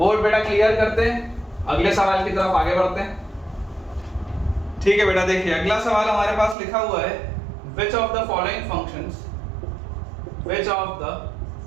बेटा क्लियर करते हैं, अगले सवाल की तरफ आगे बढ़ते हैं। ठीक है बेटा, देखिए अगला सवाल हमारे पास लिखा हुआ है, which of the following functions, which of the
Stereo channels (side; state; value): left; drops out; at 6.6 s